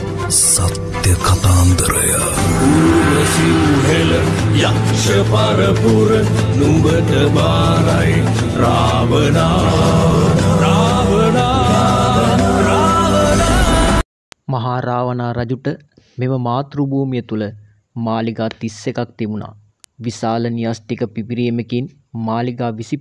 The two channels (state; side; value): identical; both; correlation 1.00